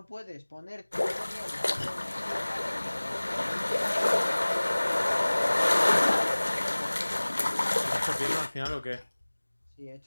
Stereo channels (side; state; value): both; inverted; correlation -1.00